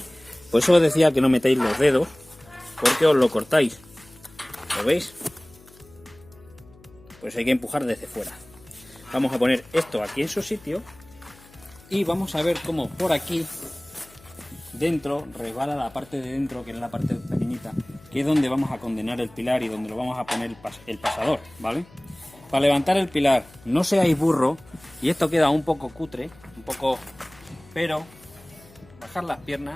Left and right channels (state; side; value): noise; left; hum, 25 dB below the sound